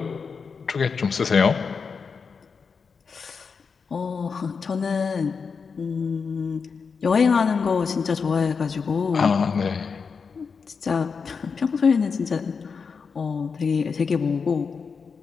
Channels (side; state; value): right; quieter; 5.5 dB